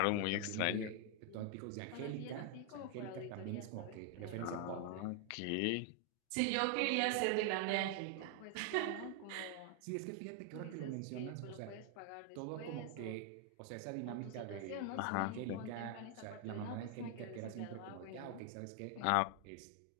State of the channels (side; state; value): both; different; correlation 0.00